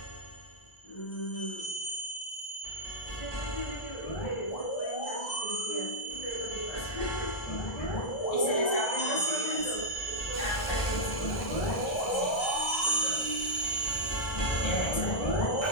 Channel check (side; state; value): right; late; 1.3 ms